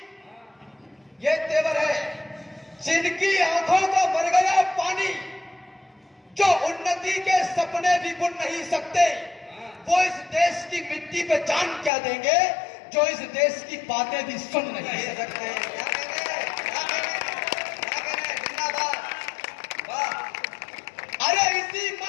ये तेवर है। जिनकी आंखों का भर गया पानी, जो उन्नति के सपने भी बुन नहीं सकते, वो इस देश की मिट्टी पे जान क्या देंगे जो इस देश की बातें भी सुन नहीं सकते। अरे इसी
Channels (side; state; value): right; drops out; at 11.9 s